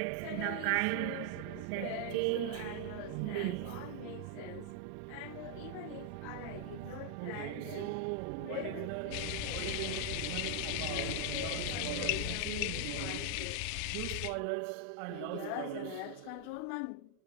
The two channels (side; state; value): both; different; correlation 0.00